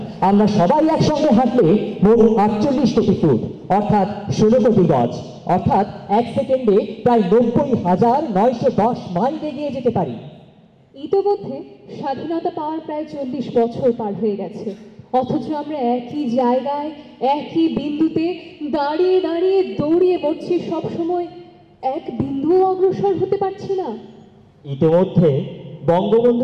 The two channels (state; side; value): identical; both; correlation 1.00